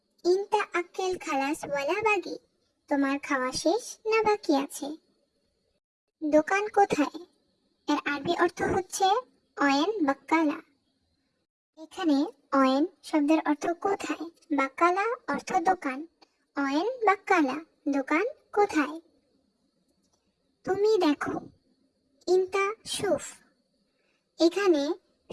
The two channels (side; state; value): both; identical; correlation 1.00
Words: ইনতা আক্কেল খালাস ওয়ালা বাগি, তোমার খাওয়া শেষ না বাকি আছে। দোকান কোথায়? এর আরবি অর্থ হচ্ছে অয়েন বাক্কালা। এখানে অয়েন শব্দের অর্থ কোথায়, বাক্কালা অর্থ দোকান। অয়েন বাক্কালা দোকান কোথায়। তুমি দেখো, ইনতা শুফ। এখানে